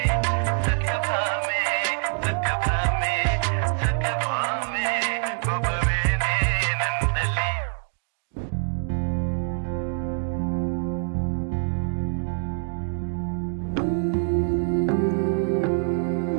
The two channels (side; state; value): left; silent; digital silence